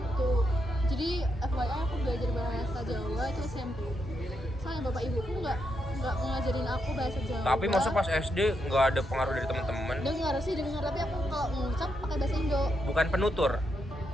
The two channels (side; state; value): both; normal; correlation 0.81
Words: jadi FYI aku belajar bahasa Jawa itu SMP. Soalnya bapak ibuku nggak ngajarin aku bahasa Jawa. Tapi masa pas SD nggak ada pengaruh dari teman-teman? Dengar, tapi aku kalau ngucap pakai bahasa Indo. Bukan penutur.